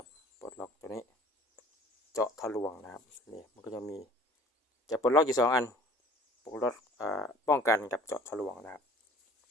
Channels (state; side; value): normal; both; correlation 0.49